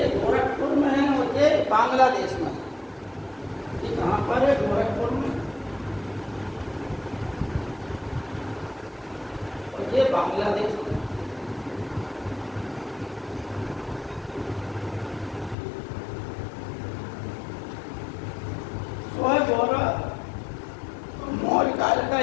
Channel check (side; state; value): right; drops out; at 15.6 s